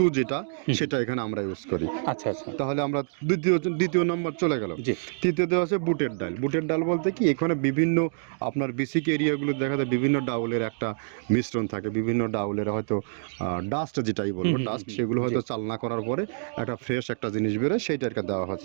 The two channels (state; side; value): silent; left; digital silence